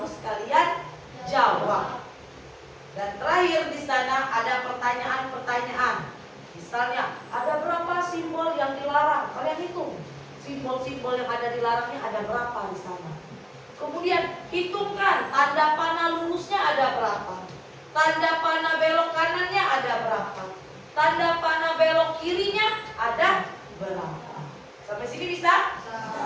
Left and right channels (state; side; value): identical; both; correlation 1.00